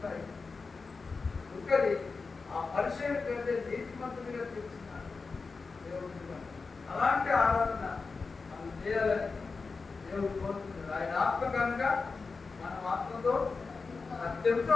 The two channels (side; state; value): right; quieter; 4.4 dB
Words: సుక్కరి ఆ పరిచయం కంటే నీతిమంతుడిగా తీర్చున్నాడు దేవుడు. అలాంటి ఆరాధన మనం చేయాలని దేవుడు కోరుతున్నాడు. ఆయన ఆత్మ కనుక మన ఆత్మతో అత్యంతో